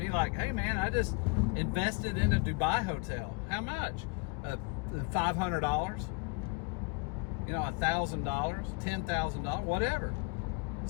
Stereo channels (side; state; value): right; quieter; 30.8 dB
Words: like, hey man, I just invested in a Dubai hotel. How much? $500? You know, $1,000, $10,000, whatever.